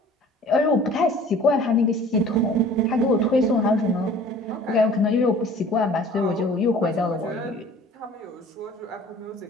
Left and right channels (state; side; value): normal; both; correlation 0.48